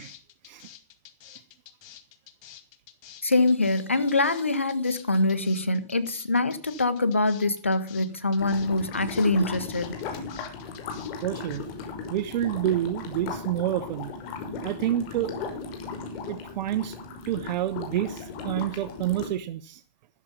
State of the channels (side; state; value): both; inverted; correlation -0.52